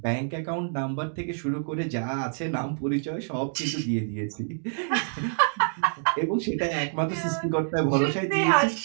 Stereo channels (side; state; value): left; silent; digital silence